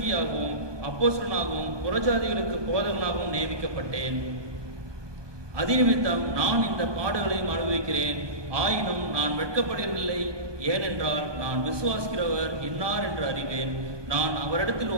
அப்போஸ்தலனாகவும் புறஜாதிகளுக்கு போதகனாகவும் நியமிக்கப்பட்டேன். அதிநிமித்தம் நான் இந்த பாடுகளையும் அனுபவிக்கிறேன். ஆயினும் நான் வெட்கப்படுவதில்லை. ஏனென்றால் நான் விசுவாசிக்கிறவர் இன்னார் என்று அறிவேன். நான் அவரிடத்தில்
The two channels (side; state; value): left; late; 1.2 ms